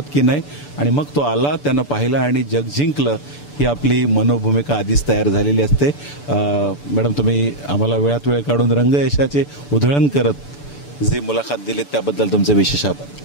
की नाही. आणि मग तो आला, त्यानं पाहिलं आणि जग जिंकलं, ही आपली मनोभूमिका आधीच तयार झालेली असते. मॅडम, तुम्ही आम्हाला वेळात वेळ काढून रंगयशाचे उधळण करत जी मुलाखत दिलीत त्याबद्दल तुमचे विशेष आभार.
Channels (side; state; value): right; late; 6.9 ms